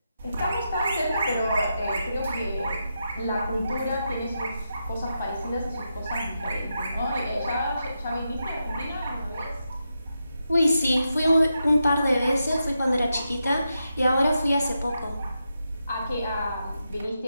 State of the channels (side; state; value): both; inverted; correlation -0.86